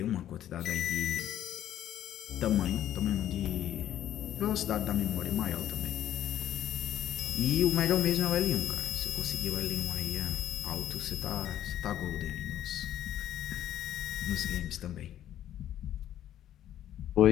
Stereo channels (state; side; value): quieter; right; 11.7 dB